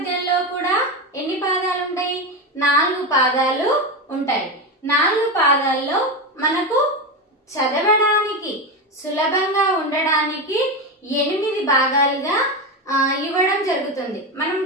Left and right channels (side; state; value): both; normal; correlation 0.16